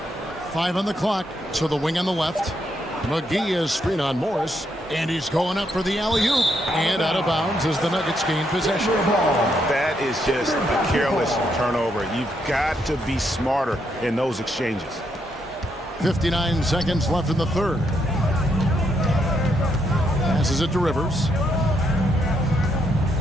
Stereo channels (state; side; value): normal; both; correlation 0.77